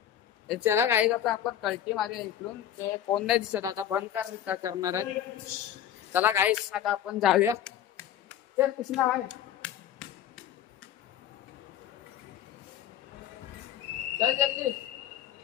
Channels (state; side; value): quieter; right; 10.5 dB